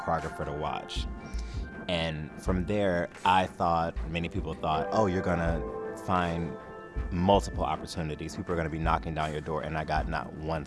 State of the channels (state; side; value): identical; both; correlation 1.00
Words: to watch. And from there, many people thought, oh, you're gonna find multiple opportunities. People are gonna be knocking down your door, and I got not one